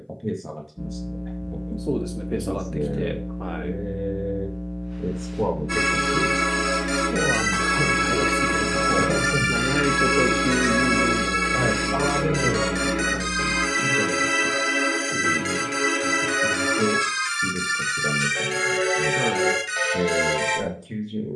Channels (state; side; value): identical; both; correlation 1.00